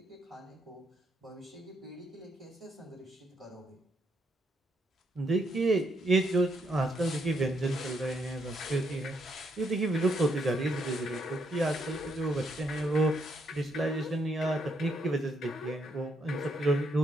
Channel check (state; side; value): normal; both; correlation 0.75